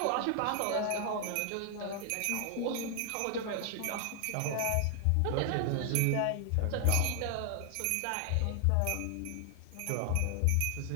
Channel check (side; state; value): both; different; correlation 0.00